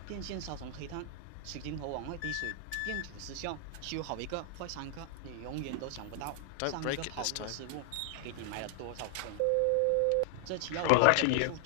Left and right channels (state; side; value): different; both; correlation 0.00